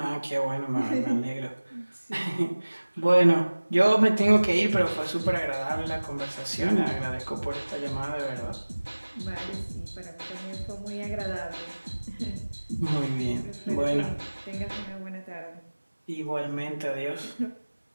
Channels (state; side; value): inverted; both; correlation -1.00